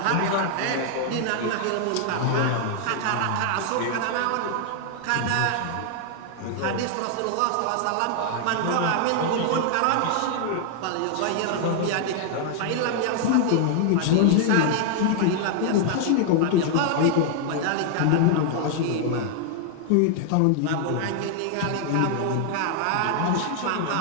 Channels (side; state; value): both; different; correlation 0.00